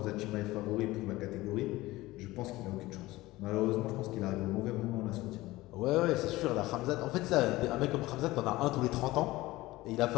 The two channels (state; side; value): quieter; right; 18.6 dB